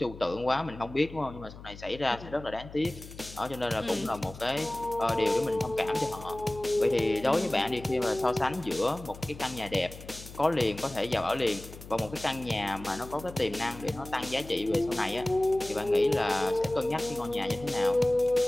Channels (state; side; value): noise; left; hum, 16 dB below the sound